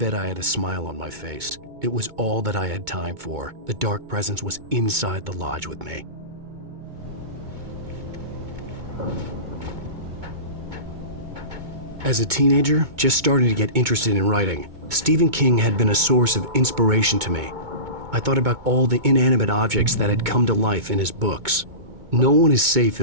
I had a smile on my face. It was all that I had time for. The dark presence was inside the lodge with me. As a teenager, just starting to get interested in writing, Stephen King had been a source of inspiration to me. I thought about all the inanimate objects that had come to life in his books. No one is safe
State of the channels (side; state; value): left; late; 2.2 ms